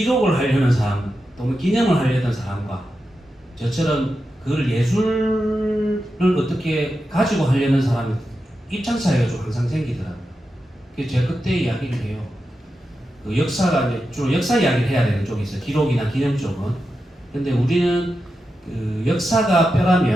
하려는 사람 또는 기념을 하려는 사람과 저처럼 그걸 예술을 어떻게 가지고 하려는 사람의 입장 차이가 좀 항상 생기더라고요. 그래서 제가 그때 이야기를 해요. 그 역사가 이제 주로 역사 이야기를 해야 되는 쪽이 있어요. 기록이나 기념 쪽은. 근데 우리는 그 역사가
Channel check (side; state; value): both; normal; correlation 0.89